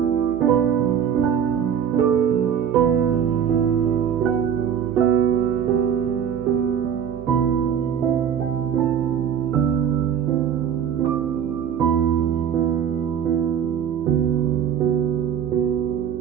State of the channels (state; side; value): quieter; left; 8.4 dB